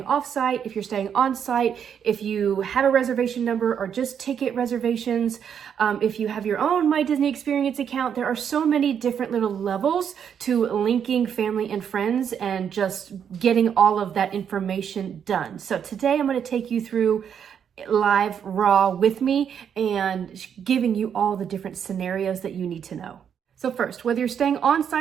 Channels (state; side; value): quieter; left; 8.0 dB